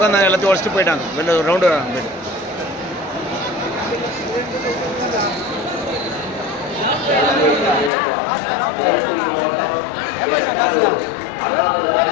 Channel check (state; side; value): drops out; right; at 7.9 s